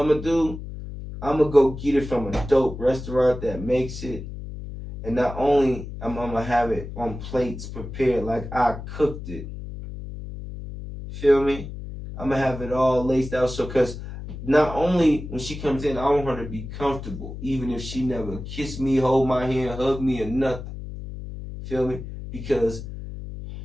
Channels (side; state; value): left; noise; hum, 10 dB below the sound